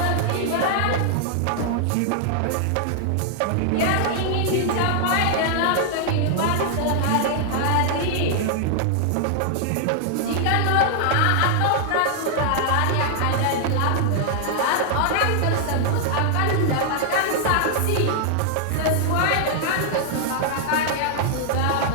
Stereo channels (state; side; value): different; both; correlation -0.01